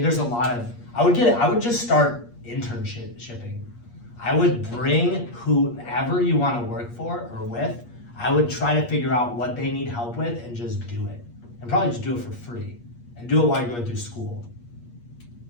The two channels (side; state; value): right; late; 8.4 ms